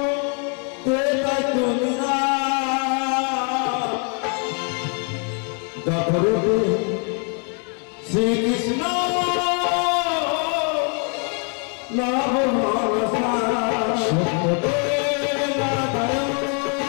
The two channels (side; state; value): right; quieter; 39.7 dB